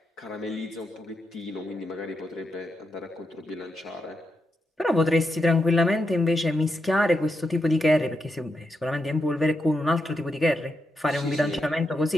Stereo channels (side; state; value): both; normal; correlation 0.84